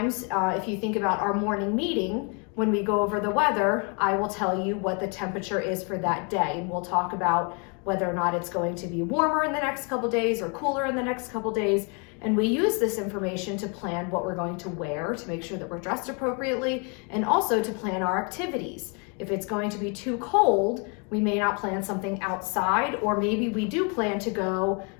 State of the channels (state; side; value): quieter; right; 35.3 dB